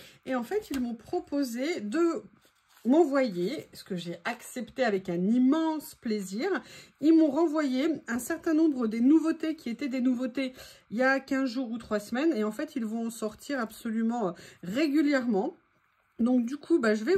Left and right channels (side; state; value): both; identical; correlation 1.00